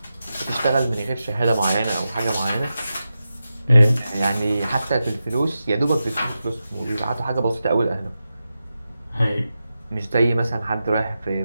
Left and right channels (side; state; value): both; inverted; correlation -0.91